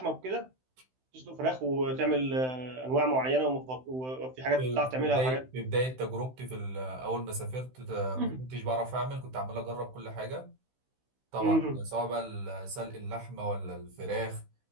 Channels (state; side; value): late; left; 16 ms